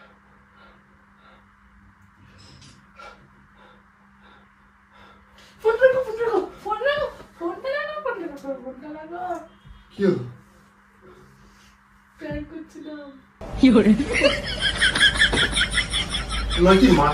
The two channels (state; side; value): identical; both; correlation 1.00